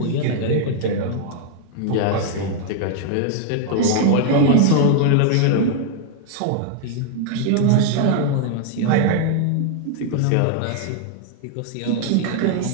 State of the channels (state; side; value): different; both; correlation 0.00